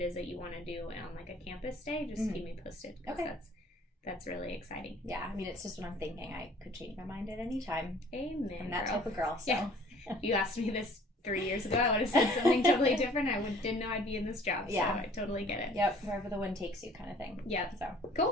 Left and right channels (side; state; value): both; normal; correlation 0.53